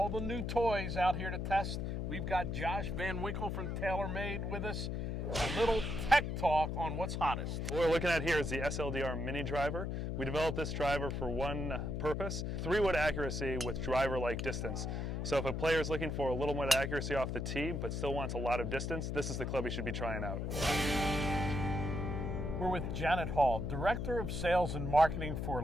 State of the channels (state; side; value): noise; left; hum, 2 dB below the sound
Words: the new toys out here to test. We've got Josh Van Winkle from TaylorMade with us. A little tech talk on what's hottest. What we're looking at here is the SLDR mini driver. We developed this driver for one purpose, 3-wood accuracy with driver-like distance. So if a player is looking for a little more accuracy off the tee but still wants a lot of distance, this is the club you should be trying out. We're with Janet Hall, Director of Sales and Marketing for